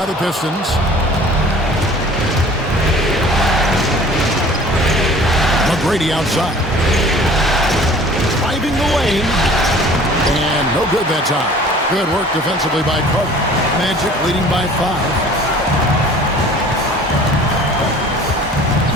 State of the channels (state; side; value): normal; both; correlation 0.48